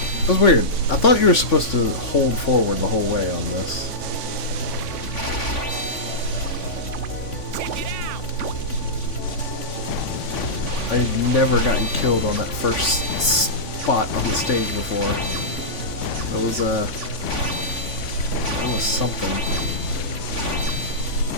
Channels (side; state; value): right; late; 3.5 ms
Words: That's weird. I thought you were supposed to hold forward the whole way on this. I had never gotten killed on that first spot on the stage before. That was something.